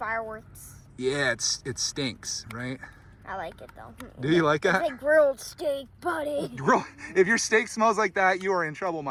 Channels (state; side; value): identical; both; correlation 1.00